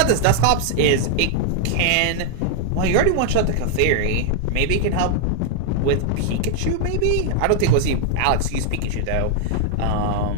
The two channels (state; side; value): different; both; correlation 0.00